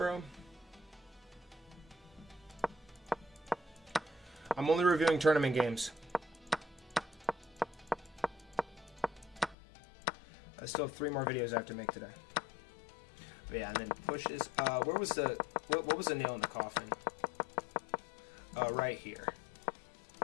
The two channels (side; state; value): right; drops out; at 9.6 s